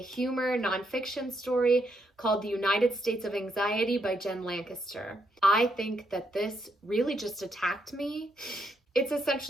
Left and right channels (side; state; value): both; normal; correlation 0.78